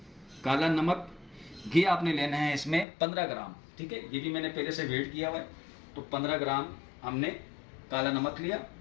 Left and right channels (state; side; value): drops out; right; at 2.9 s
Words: घी आपने लेना है इसमें 15 ग्राम, ठीक है। ये भी मैंने पहले से वेट किया हुआ है, तो 15 ग्राम हमने काला नमक लिया।